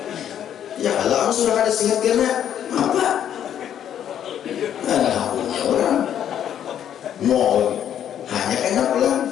Ya kalau sudah ada sihat karena apa? Ada punya orang. Mau hanya kena pulang.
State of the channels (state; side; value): quieter; right; 9.9 dB